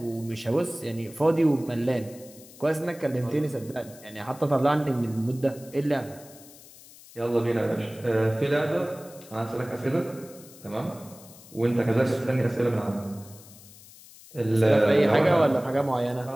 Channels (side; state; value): left; noise; hiss, 21 dB below the sound